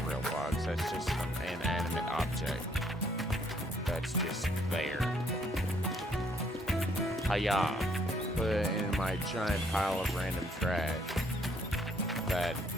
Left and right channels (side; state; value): both; normal; correlation 0.67